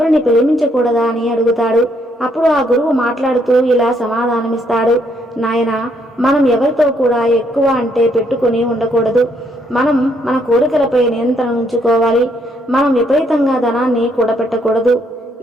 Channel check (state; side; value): normal; both; correlation 0.71